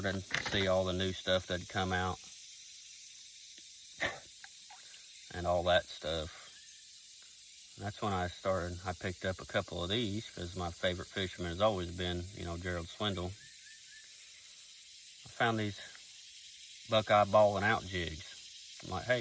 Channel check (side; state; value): both; identical; correlation 1.00